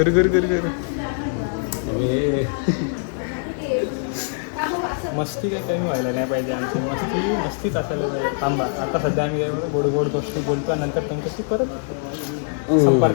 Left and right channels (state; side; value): silent; right; digital silence